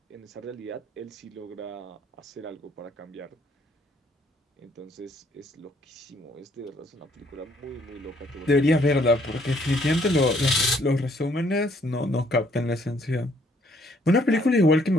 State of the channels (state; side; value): normal; both; correlation 0.65